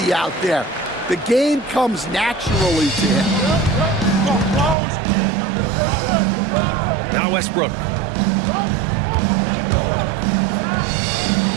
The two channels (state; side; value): drops out; left; at 4.8 s